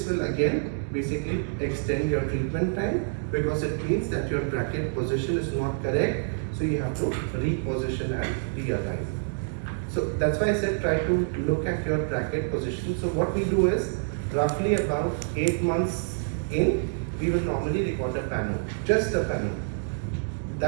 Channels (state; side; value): silent; left; 60 dB below the other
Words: will again basically extend your treatment time because it means that your bracket position is not correct. So you have to reposition and realign. So that's why I said try to look at your bracket position. So what we do is roughly about 8 months in, we will normally record a panel, just a panel.